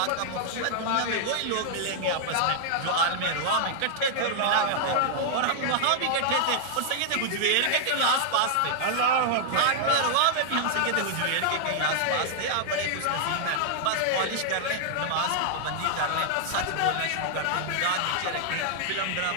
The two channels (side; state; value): both; different; correlation -0.01